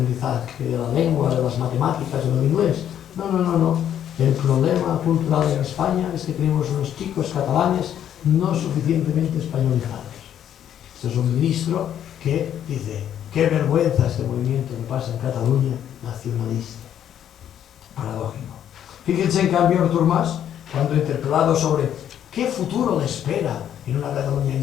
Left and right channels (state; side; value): quieter; right; 10.1 dB